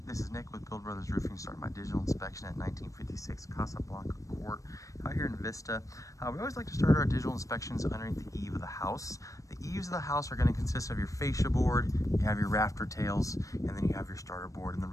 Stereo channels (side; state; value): right; late; 0.16 ms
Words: This is Nick with Build Brothers Roofing, starting my digital inspection at 1956 Casablanca Court out here in Vista. We always like to start our digital inspections underneath the eave of the house. The eaves of the house are going to consist of your fascia board, you have your rafter tails, and then you have your starter board. And the